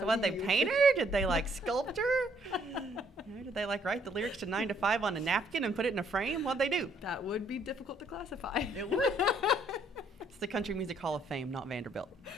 what, they Dali. paint her? Did they like sculpt her? Did they like write the lyrics to 9 to 5 on a napkin and put it in a frame? What'd they do? That would be difficult to classify. It would. It's the Country Music Hall of Fame, not Vanderbilt.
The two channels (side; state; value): both; normal; correlation 0.67